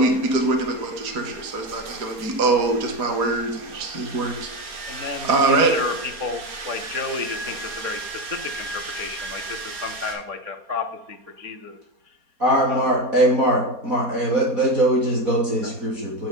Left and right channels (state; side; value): late; left; 4.2 ms